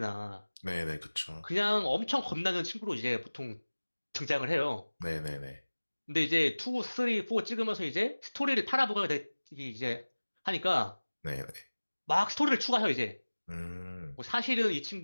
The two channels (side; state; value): both; inverted; correlation -1.00